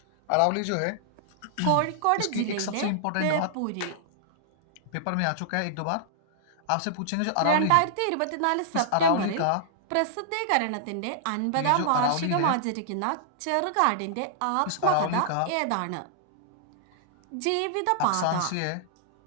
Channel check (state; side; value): different; both; correlation -0.01